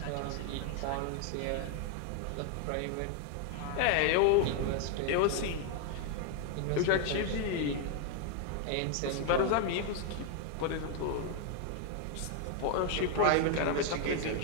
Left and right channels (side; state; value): both; different; correlation 0.00